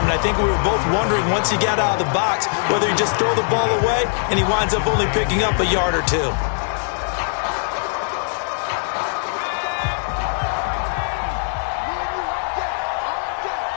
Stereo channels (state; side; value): silent; right; 62 dB below the other